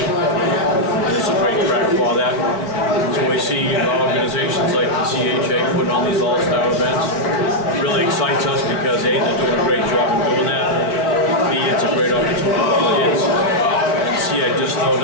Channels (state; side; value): late; right; 4.4 ms